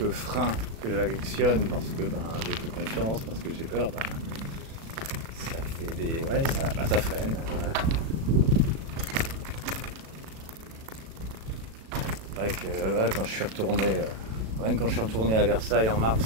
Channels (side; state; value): left; late; 36 ms